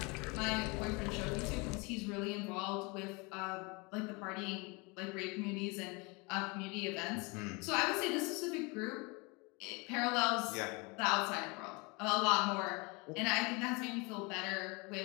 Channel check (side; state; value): right; quieter; 28.4 dB